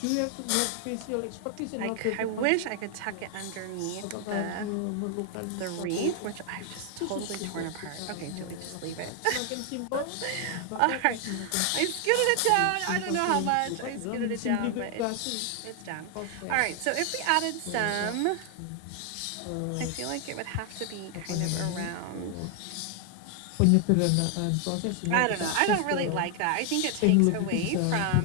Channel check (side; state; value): both; different; correlation 0.00